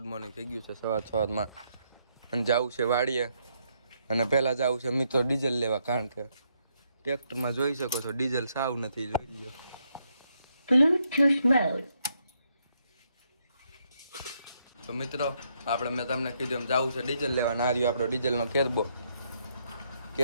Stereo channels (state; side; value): inverted; both; correlation -0.76